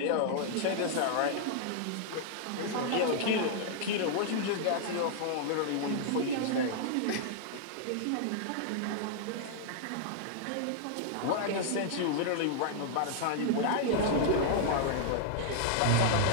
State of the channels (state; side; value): different; both; correlation -0.01